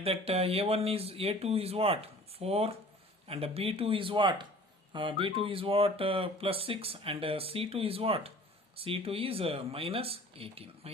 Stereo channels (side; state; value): both; normal; correlation 0.47